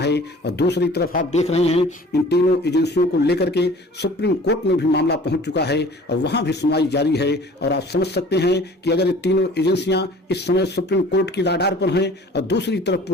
और दूसरी तरफ आप देख रहे हैं इन तीनों एजेंसियों को लेकर के सुप्रीम कोर्ट में भी मामला पहुंच चुका है और वहां भी सुनवाई जारी है। और आप समझ सकते हैं कि अगर ये तीनों एजेंसियां इस समय सुप्रीम कोर्ट की राडार पर हैं और दूसरी तरफ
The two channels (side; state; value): both; normal; correlation 0.47